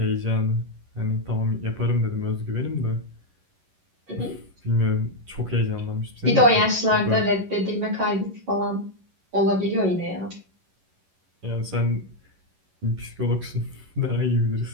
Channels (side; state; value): left; late; 11 ms